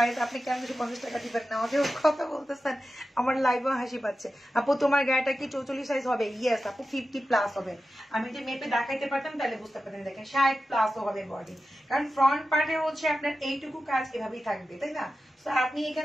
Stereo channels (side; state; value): both; normal; correlation 0.93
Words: আপনি কেন 250 টাকা দিবেন না? আমাকে কথা বলতেছেন, আমার লাইভও হাসি পাচ্ছে। আপু তোমার গায়েটা কি 44 সাইজ হবে? ইয়েস আপু, 50+ হবে। আমি যদি মেপে দেখাইতে পারতাম তাহলে বুঝতে পারতেন। দেখেন 60+ হবে বডি, কারণ ফ্রন্ট পার্টে হচ্ছে আপনার এইটুকু কাজ এভাবেই থাকবে, তাই না? তো আপনি